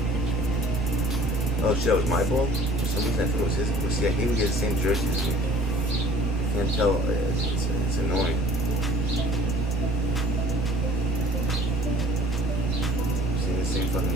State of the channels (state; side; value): normal; both; correlation 0.50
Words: Oh shit, that was my ball? For some reason I thought it was his ball. See, I hate when he has the same jersey as me. I can't tell. It's annoying. Seeing the same fucking